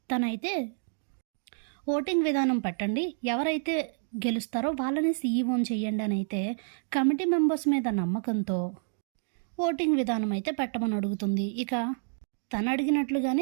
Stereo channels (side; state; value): left; silent; digital silence